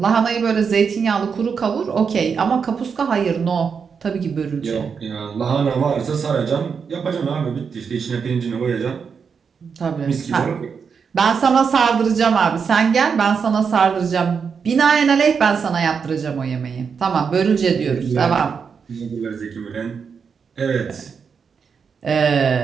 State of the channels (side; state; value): left; quieter; 6.1 dB